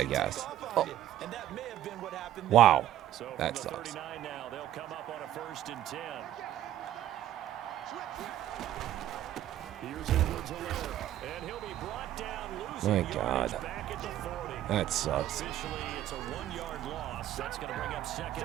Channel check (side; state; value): left; quieter; 12.6 dB